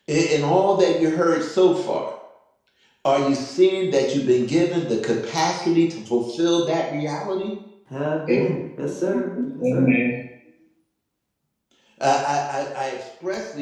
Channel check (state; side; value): identical; both; correlation 1.00